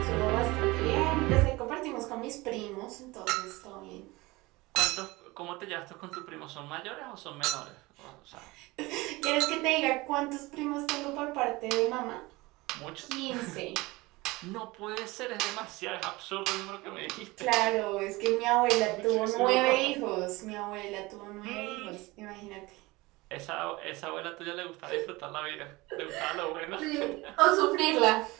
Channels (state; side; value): quieter; left; 21.8 dB